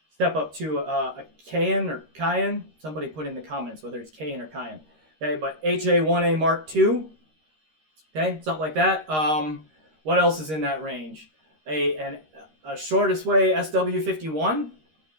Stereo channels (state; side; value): late; left; 13 ms